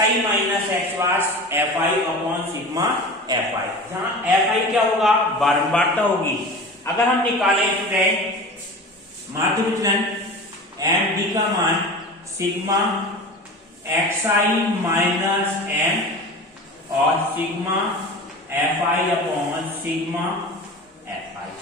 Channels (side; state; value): both; normal; correlation 0.34